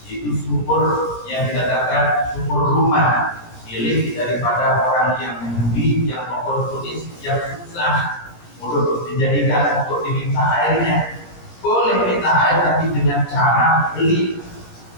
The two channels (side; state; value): right; late; 17 ms